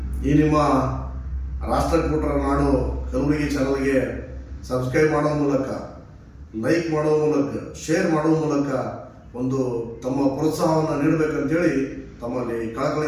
ಈ ನಿಮ್ಮ ರಾಷ್ಟ್ರಕೂಟರ ನಾಡು ಕಲಬುರಗಿ ಚಾನಲ್ಗೆ ಸಬ್ಸ್ಕ್ರೈಬ್ ಮಾಡುವ ಮೂಲಕ, ಲೈಕ್ ಮಾಡುವ ಮೂಲಕ, ಶೇರ್ ಮಾಡುವ ಮೂಲಕ ಒಂದು ತಮ್ಮ ಪ್ರೋತ್ಸಾಹವನ್ನು ನೀಡಬೇಕಂತೇಳಿ ತಮ್ಮಲ್ಲಿ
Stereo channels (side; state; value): both; identical; correlation 1.00